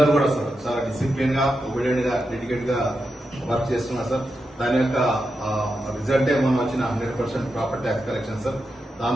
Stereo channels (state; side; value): normal; both; correlation 0.87